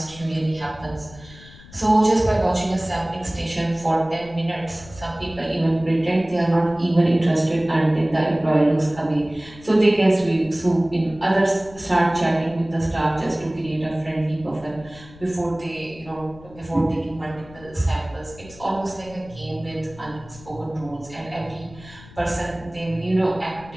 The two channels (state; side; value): noise; left; rumble, 20 dB below the sound